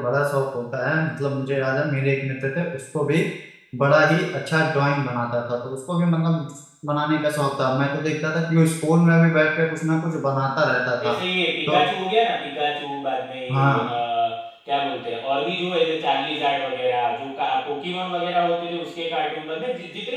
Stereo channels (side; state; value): both; identical; correlation 1.00